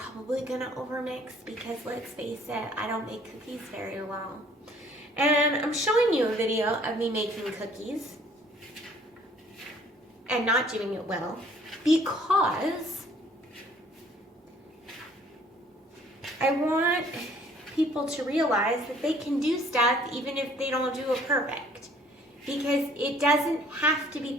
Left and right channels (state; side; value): normal; both; correlation 0.58